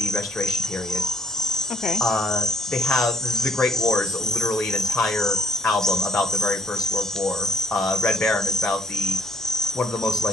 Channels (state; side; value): normal; both; correlation 0.62